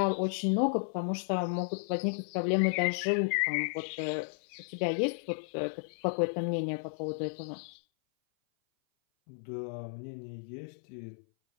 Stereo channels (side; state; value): right; silent; 56 dB below the other